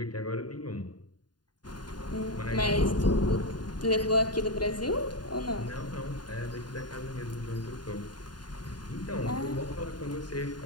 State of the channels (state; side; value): late; right; 0.70 ms